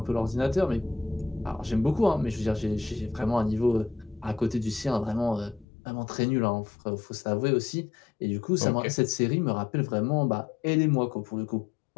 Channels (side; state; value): right; drops out; at 5.7 s